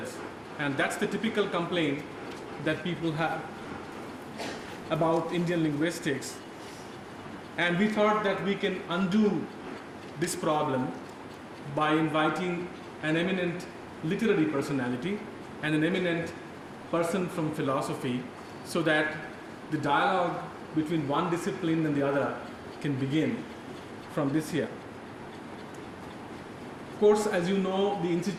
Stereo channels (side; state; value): both; identical; correlation 1.00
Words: And that's the typical complaint that people have about Indian linguistics. And we thought that we can undo this problem by inviting an eminent literary personality and an eminent person from philosophy, so that the dialogue between one discipline and the other can begin from this year. Of course, as you know, the